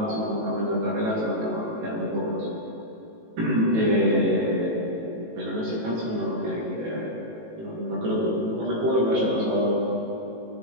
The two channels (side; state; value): left; late; 18 ms